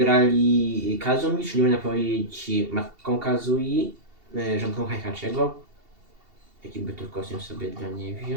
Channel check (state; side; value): late; left; 2.7 ms